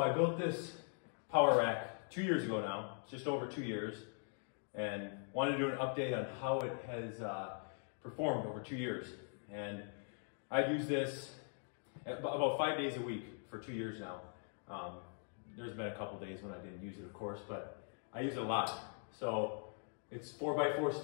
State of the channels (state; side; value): silent; right; 50 dB below the other